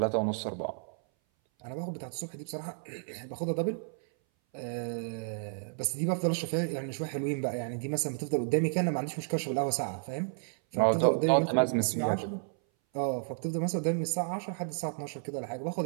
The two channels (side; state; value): left; silent; 57 dB below the other